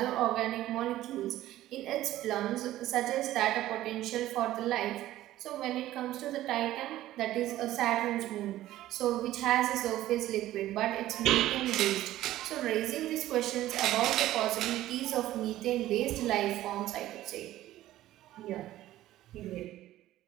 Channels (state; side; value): quieter; left; 14.5 dB